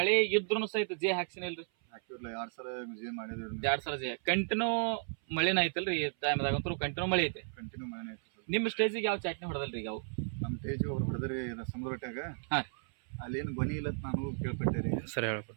ಇದ್ರೂ ಸಹಿತ ಜೇ ಹಾಕ್ಸಿನಿಲ್ರಿ? ಹಾಕಿರ್ಲಿಲ್ಲ, 2 ಸಲ ಜೇ ಮಾಡಿದ್ರಿ. 2 ಸಲ ಜೇ ಕಂಟಿನ್ಯೂ ಮಳೆನ ಐತಲ್ರಿ? ಈ ಟೈಮ್ದಾಗಂತೂ ಕಂಟಿನ್ಯೂ ಮಳೆ ಐತೆ. ಕಂಟಿನ್ಯೂ ಮಳೆ ಐತಿ. ನಿಮ್ಮ ಸ್ಟೇಜಿಗೆ ಯಾವ ಚಟ್ನಿ ಹೊಡೆದಲ್ರಿ ಈಗ? ಅವು ನಮ್ಮ ಸ್ಟೇಜಿಗೆ ಅವ್ರು ಹೊಡೆದ್ರಿ ಸಮುದ್ರಟ್ಯಾಗ. ಹಾಂ, ಅಲ್ಲೇನು ಗೊನಿ ಇಲ್ಲ ಅಂತ ನಾನು ಕೇಳ್ಪಟ್ಟೆ ರೀ. ಸರಿ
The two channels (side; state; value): left; silent; 55 dB below the other